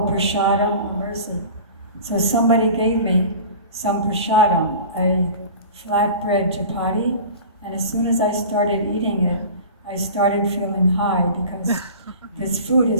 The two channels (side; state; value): both; inverted; correlation -0.38